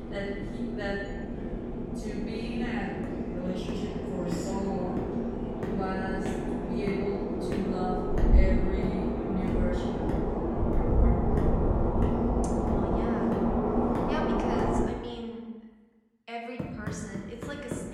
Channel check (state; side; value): identical; both; correlation 1.00